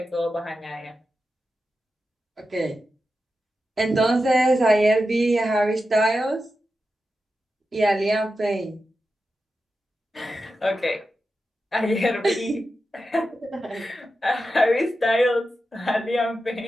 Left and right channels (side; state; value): both; normal; correlation 0.90